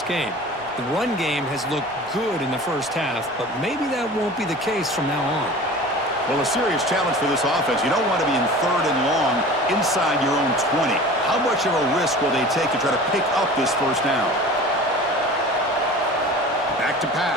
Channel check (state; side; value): normal; both; correlation 0.39